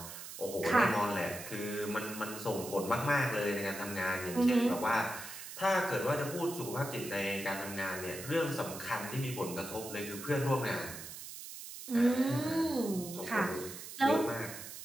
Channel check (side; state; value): right; noise; hiss, 11 dB below the sound